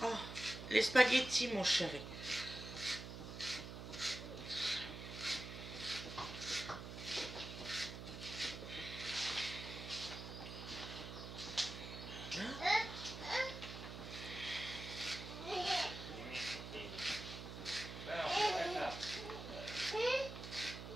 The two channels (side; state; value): right; noise; hum, 9 dB below the sound